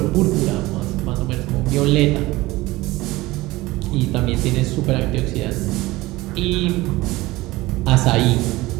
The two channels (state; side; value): quieter; left; 19.4 dB